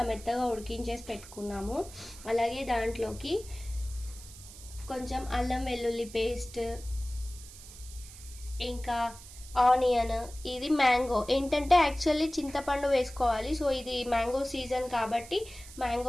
మెత్తగా ఉడికించేసి పెట్టుకున్నాము. అలాగే దాంట్లోకి కొంచెం అల్లం వెల్లుల్లి పేస్ట్, ఇంకా ఆనియన్, ఇది మ్యాంగో. ఏంటంటే యాక్చువల్లీ చింతపండు వేసుకోవాలి, సో ఇది మ్యాంగో సీజన్ కాబట్టి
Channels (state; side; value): noise; right; hiss, 17 dB below the sound